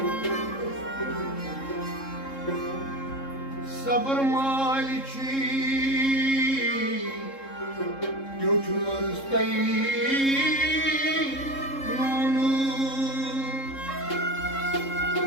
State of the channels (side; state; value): right; late; 3.7 ms